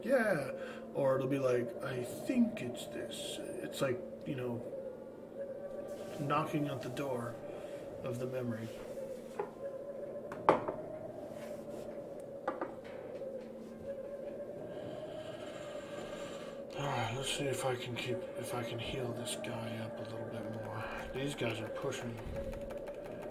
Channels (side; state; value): both; identical; correlation 1.00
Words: yeah, or it'll be like, I think it's this. It's like, you know, knocking at the door of the memory. Alright, let's see if I can heal this guy up a little bit more. These guys are pushing.